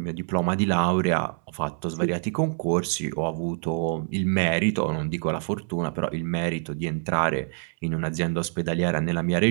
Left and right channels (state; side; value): silent; left; 61 dB below the other